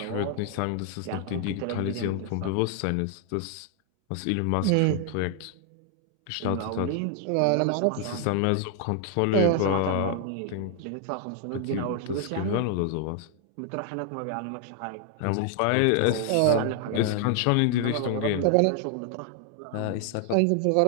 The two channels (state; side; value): different; both; correlation 0.00